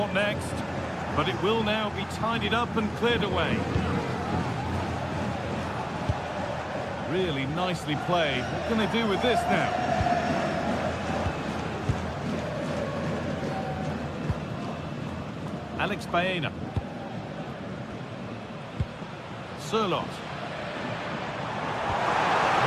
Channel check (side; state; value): both; identical; correlation 1.00